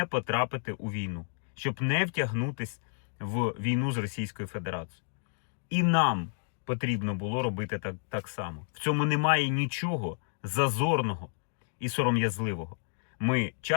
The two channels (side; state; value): right; silent; digital silence